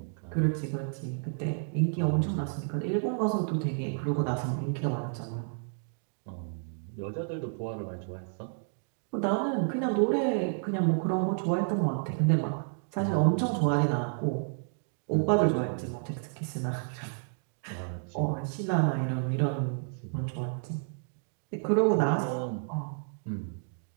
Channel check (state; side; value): silent; left; digital silence